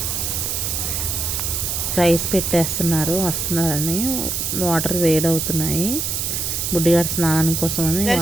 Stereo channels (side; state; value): right; noise; hiss, 1 dB below the sound